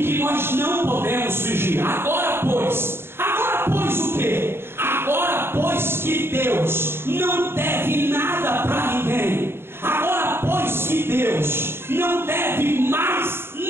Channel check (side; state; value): left; late; 0.11 ms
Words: que nós não podemos fugir. Agora pois o quê? Agora pois que Deus não deve nada para ninguém. Agora pois que Deus não deve mais